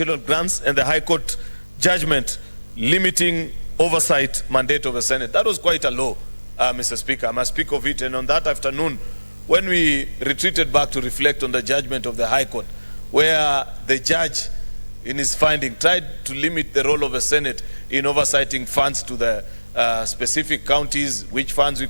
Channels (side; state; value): both; inverted; correlation -1.00